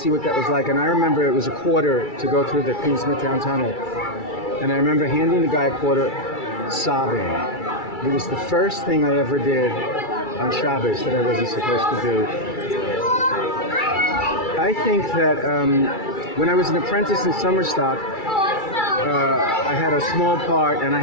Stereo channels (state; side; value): late; right; 2.3 ms